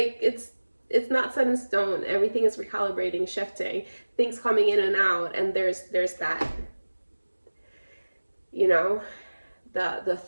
it's not set in stone. Everything is recalibrating, shifting, things coming in and out, and there's that, you know, the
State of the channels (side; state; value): both; inverted; correlation -1.00